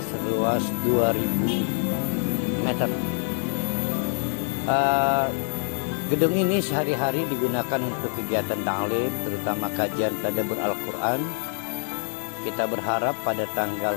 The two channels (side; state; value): right; silent; 61 dB below the other